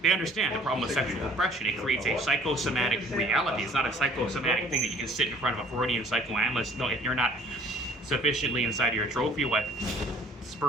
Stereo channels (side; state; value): both; normal; correlation 0.54